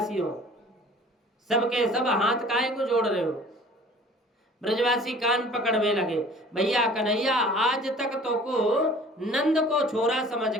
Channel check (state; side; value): normal; both; correlation 0.48